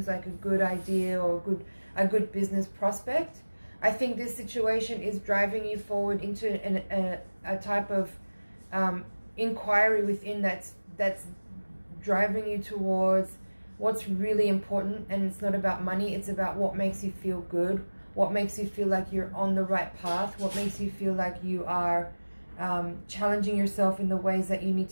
like a good idea or a good business prospect. I think this situation is driving you forward into a type of inquiry within that's driving you towards what's really important. And it's not about money, it's about what makes you feel good, what makes you feel like you're on the right path, what makes you feel like you are challenging yourself in the ways that you need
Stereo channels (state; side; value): inverted; both; correlation -1.00